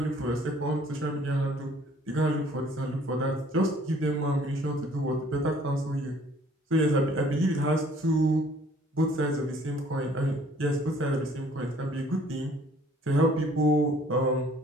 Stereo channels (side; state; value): both; normal; correlation 0.57